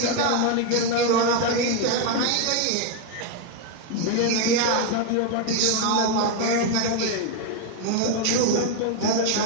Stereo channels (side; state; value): both; different; correlation 0.01